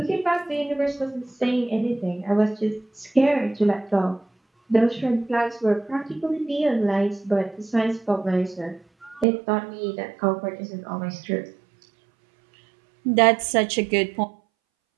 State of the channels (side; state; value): left; drops out; at 9.2 s